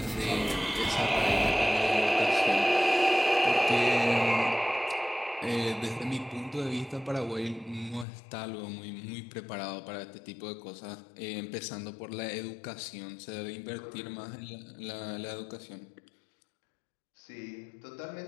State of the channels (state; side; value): drops out; right; at 8.1 s